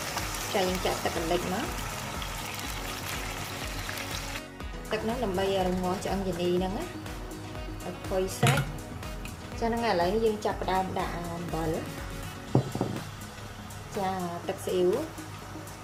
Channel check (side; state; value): both; identical; correlation 1.00